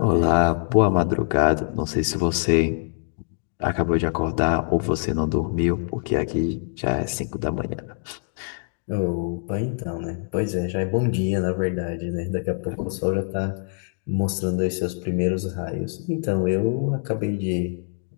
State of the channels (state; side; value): silent; right; digital silence